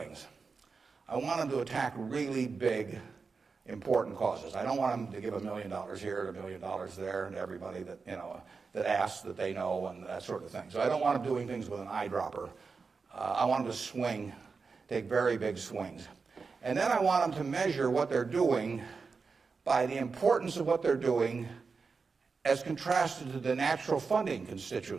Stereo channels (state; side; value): quieter; left; 4.8 dB